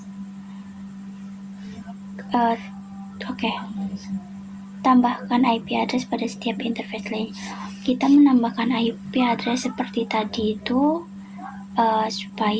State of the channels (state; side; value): identical; both; correlation 1.00